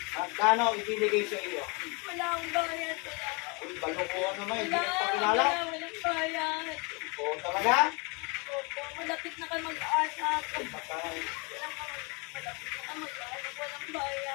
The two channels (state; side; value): quieter; right; 30.8 dB